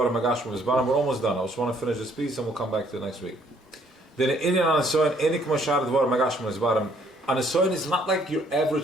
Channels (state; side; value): normal; both; correlation 0.64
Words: magashim v'zbaram. We're almost done. I just want to finish this piece and we'll come back to it next week. Then inner neson enik mashar devar magashim v'zbaram. A nesoin is not like your